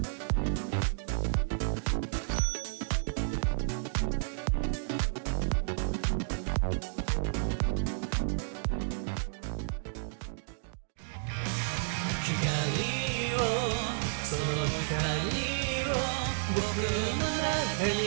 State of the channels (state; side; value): silent; left; digital silence